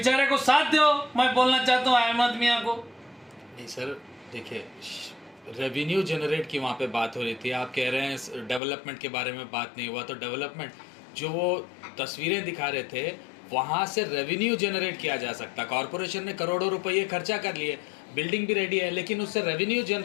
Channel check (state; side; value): drops out; right; at 8.6 s